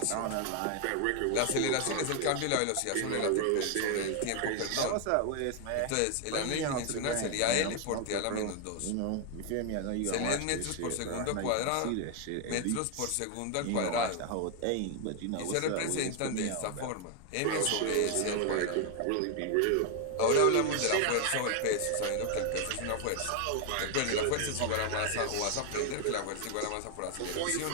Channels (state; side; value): different; both; correlation 0.00